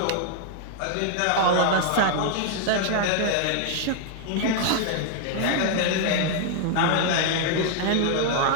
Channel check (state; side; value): different; both; correlation 0.00